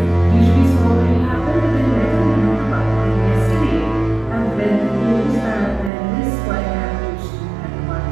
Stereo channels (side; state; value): left; drops out; at 5.9 s